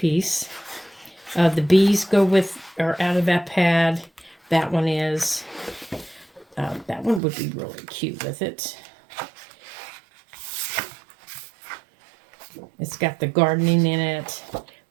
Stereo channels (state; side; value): drops out; left; at 7.2 s